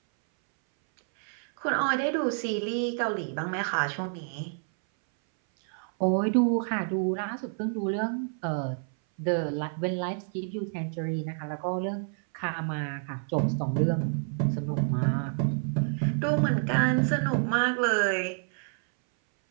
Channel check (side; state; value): left; silent; 58 dB below the other